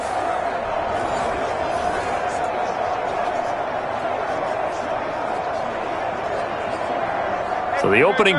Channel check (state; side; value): identical; both; correlation 1.00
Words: So the opening